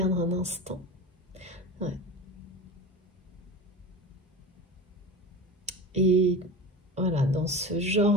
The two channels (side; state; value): both; normal; correlation 0.30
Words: un instant. Ouais. Et voilà, dans ce